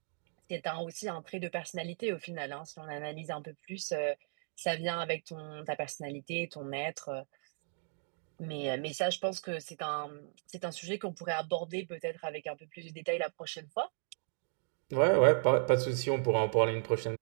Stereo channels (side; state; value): left; silent; 54 dB below the other